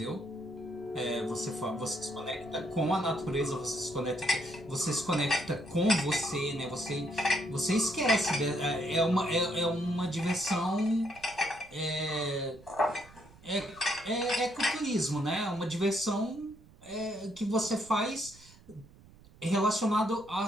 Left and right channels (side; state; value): right; noise; rumble, 23 dB below the sound